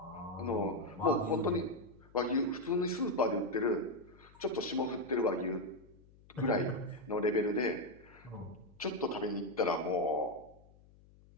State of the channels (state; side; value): noise; left; hum, 25 dB below the sound